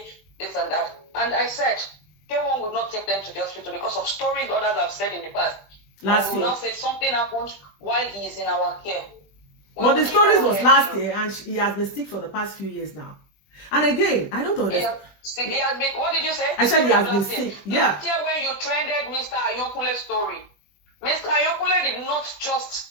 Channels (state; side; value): late; right; 20 ms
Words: this and that. And I said, K1 would not take them to the hospital because of stories others have said in the past. Last year. Now say something happened while he is in our care. But the stories was last year, and he has been sick for the past few years now. And again, I don't understand. He has been, what did you say? I said he has been sick. Yeah. Last year when you trended Mr. Ayokule story, Mr. Ayokule did not just